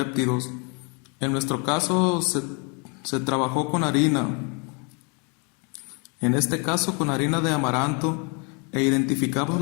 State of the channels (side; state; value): right; quieter; 35.0 dB